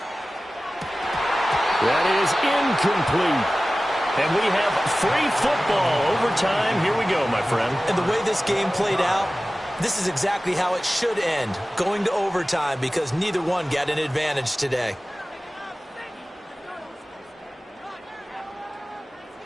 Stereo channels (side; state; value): both; normal; correlation 0.96